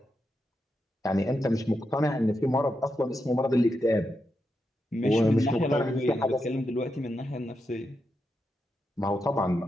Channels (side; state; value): both; normal; correlation 0.86